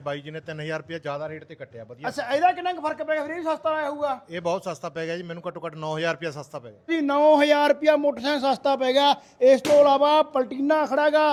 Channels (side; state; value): both; identical; correlation 1.00